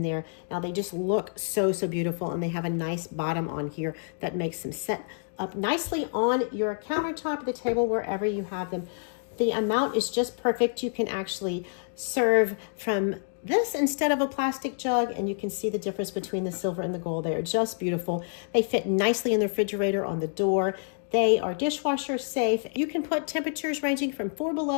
there. Now they just look so beautiful, and they have a nice bottom on here that makes them set up nicely on your countertop, the table, wherever you have them. The amount is just perfect. You can actually serve from this instead of a plastic jug, and you can see the difference between the silver and the gold. They are just beautiful. They fit nicely in the refrigerator on the door. They are dishwasher safe. You can put temperatures ranging from 4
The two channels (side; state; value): right; silent; digital silence